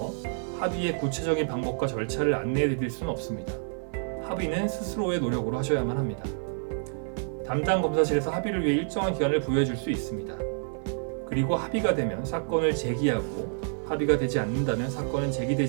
합의의 구체적인 방법과 절차를 안내해 드릴 수는 없습니다. 합의는 스스로의 노력으로 하셔야만 합니다. 담당 검사실에서 합의를 위해 일정한 기간을 부여해 줄 수 있습니다. 그리고 합의가 되면 사건을 제기하고 합의가 되지 않는다면 사건은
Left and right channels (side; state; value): left; silent; 55 dB below the other